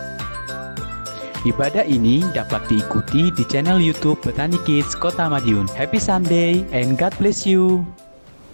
Ibadah ini dapat diikuti di channel YouTube Petani Kids Kota Madiun. Happy Sunday and God bless you.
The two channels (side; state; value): both; inverted; correlation -1.00